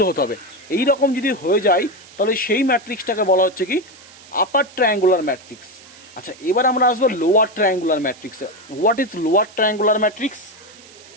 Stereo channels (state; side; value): noise; right; hiss, 22 dB below the sound